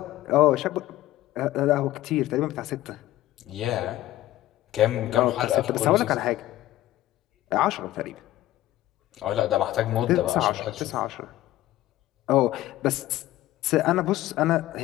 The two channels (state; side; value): quieter; right; 15.3 dB